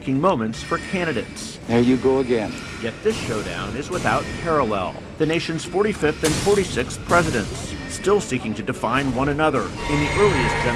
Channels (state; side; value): identical; both; correlation 1.00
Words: moments for candidates. There you go again. Yet this showdown is without parallel. The nation's 45th and 46th presidents, still seeking to define one another in the earliest